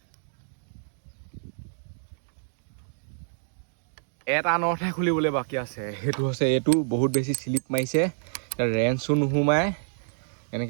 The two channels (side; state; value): left; silent; digital silence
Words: এটা নটহে খুলিবলৈ বাকী আছে সেইটো হৈছে এইটো বহুত বেছি স্লিপ মাৰিছে ৰেঞ্চো নোসোমায়